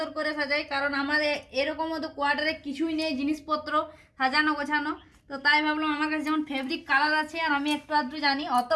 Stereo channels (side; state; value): both; identical; correlation 1.00